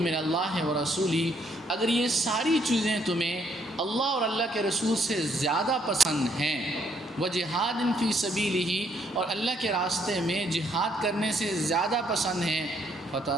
من اللہ و رسولہ، اگر یہ ساری چیزیں تمہیں اللہ اور اللہ کے رسول سے زیادہ پسند ہیں، وجہاد فی سبیلہ، اور اللہ کے راستے میں جہاد کرنے سے زیادہ پسند ہیں،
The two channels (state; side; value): normal; both; correlation 0.70